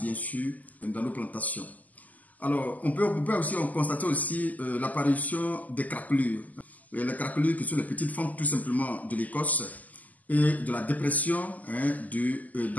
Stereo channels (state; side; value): late; right; 0.079 ms